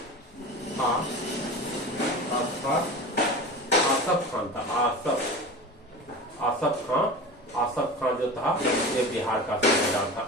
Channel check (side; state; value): both; normal; correlation 0.32